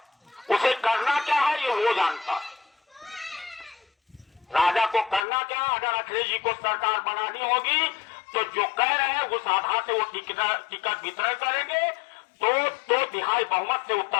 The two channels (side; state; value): right; drops out; at 5.2 s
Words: उसे करना क्या है ये वो जानता है। राजा को करना क्या, अगर अखिलेश जी को सरकार बनानी होगी तो जो कह रहे हैं उस आधार से वो टिकट वितरण करेंगे, तो 2/3 बहुमत से